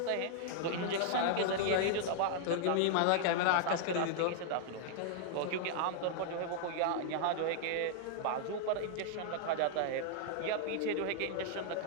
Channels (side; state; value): both; different; correlation -0.01